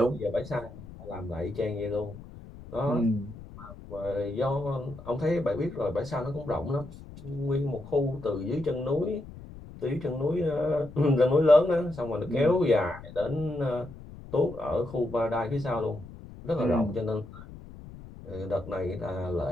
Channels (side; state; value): left; noise; rumble, 16 dB below the sound